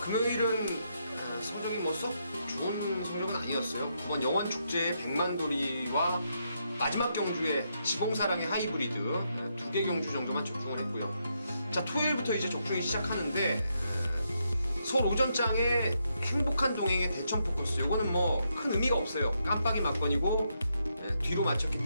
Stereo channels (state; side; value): inverted; both; correlation -0.79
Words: 성적이 썩 좋은 성적은 아니었어요. 9번 영원축제의 백만돌이와 마지막 경주에 지공사랑의 하이브리드 2개 경주 정도만 적중을 했고요. 자, 토요일부터 이제 적중이 시작하는데 서울 오전장의 행복한 동행의 대천 포커스, 요거는 큰 의미가 없어요. 깜빡이 막건이고 뒤로 맞췄기